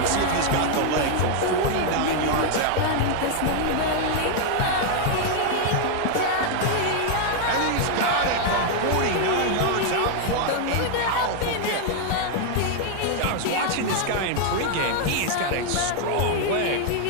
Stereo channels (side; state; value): both; different; correlation 0.00